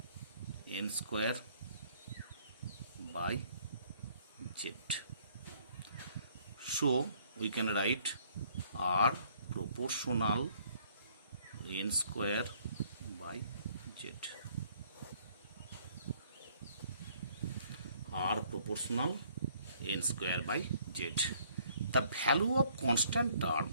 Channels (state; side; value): inverted; both; correlation -0.62